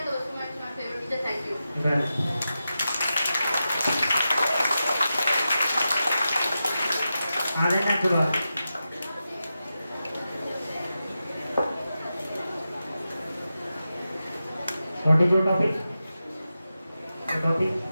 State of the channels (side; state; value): both; inverted; correlation -0.91